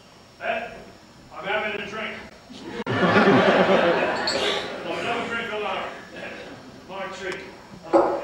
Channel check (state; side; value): identical; both; correlation 1.00